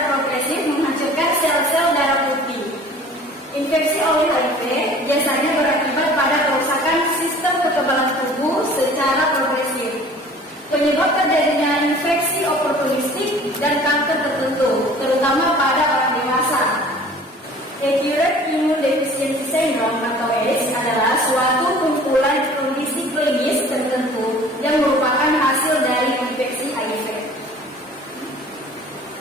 progresif menghancurkan sel-sel darah putih. Infeksi oleh HIV biasanya berakibat pada kerusakan sistem kekebalan tubuh secara progresif. Penyebab terjadinya infeksi oportunistik dan kanker tertentu, terutama pada orang dewasa. Acute Immunodeficiency Syndrome atau AIDS adalah suatu kumpulan kondisi klinis tertentu yang merupakan hasil dari infeksi HIV.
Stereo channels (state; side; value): normal; both; correlation 0.47